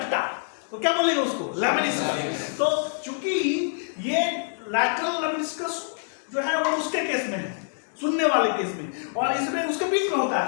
तो क्या बोलेंगे उसको, लेमनिस्कस। तो चूंकि ये लैटरल लेमनिस्कस जो है वो उसके केस में है, सुनने वाले केस में, और इसमें उसके बीच में होता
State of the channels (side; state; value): right; silent; 60 dB below the other